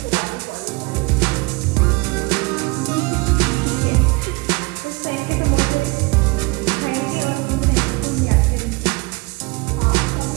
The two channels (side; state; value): left; quieter; 26.3 dB